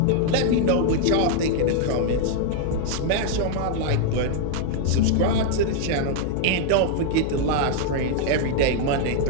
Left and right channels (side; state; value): both; different; correlation 0.00